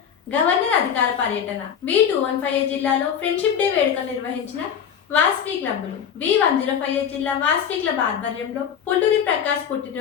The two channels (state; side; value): quieter; right; 8.1 dB